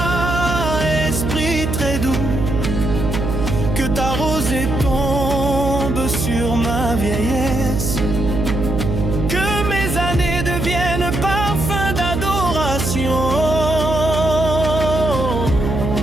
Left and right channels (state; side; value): noise; right; hum, 2 dB below the sound